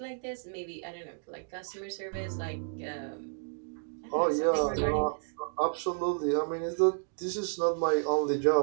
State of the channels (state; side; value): silent; left; digital silence